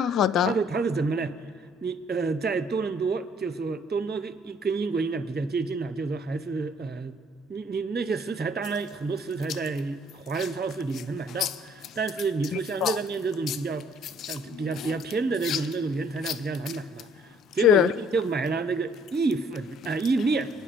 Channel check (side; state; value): both; normal; correlation 0.61